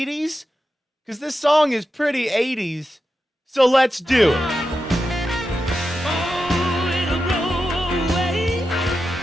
Because this song is pretty 80s, so let's do it.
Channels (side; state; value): both; normal; correlation 0.89